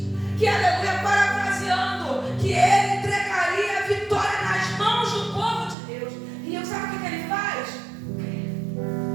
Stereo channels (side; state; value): left; drops out; at 5.8 s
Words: que, aleluia, parafraseando, que ele entregaria a vitória nas mãos do povo de Deus. E sabe o que ele faz?